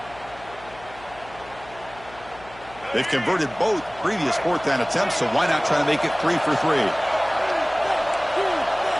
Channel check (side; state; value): left; noise; hum, 21 dB below the sound